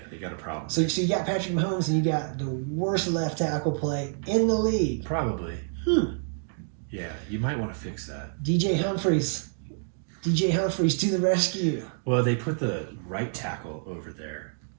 they got a problem. So you got Patrick Mahomes, and you got the worst left tackle play in the league. Probably. Yeah, you might want to fix that. DJ Humphries to the rescue. Well, they put the right tackle over there.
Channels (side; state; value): left; silent; digital silence